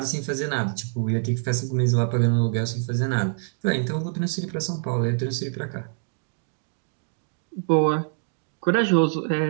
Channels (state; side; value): silent; left; digital silence